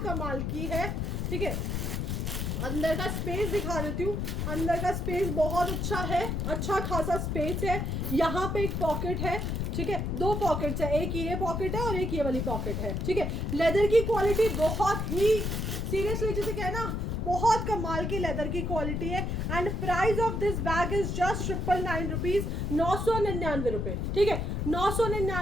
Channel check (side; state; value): left; noise; rumble, 1 dB below the sound